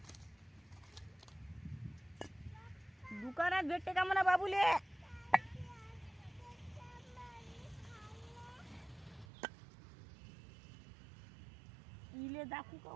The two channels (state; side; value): drops out; left; at 9.2 s